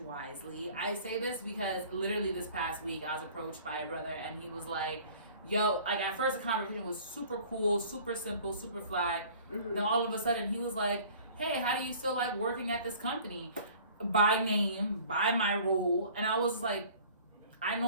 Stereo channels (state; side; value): inverted; both; correlation -0.49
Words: I say this because literally this past week I was approached by a brother, and he was like, yo, like at first the conversation was super cool, super simple, super fly. Then all of a sudden he was like, hey, how do you still like working at this company? By name, by my role. And I was like, I